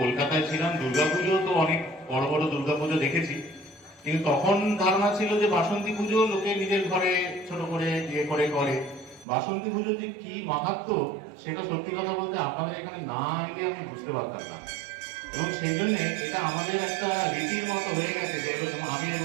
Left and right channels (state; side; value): drops out; left; at 9.2 s